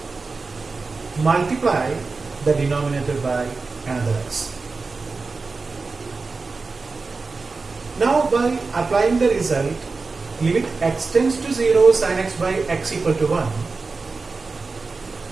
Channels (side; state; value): left; quieter; 4.1 dB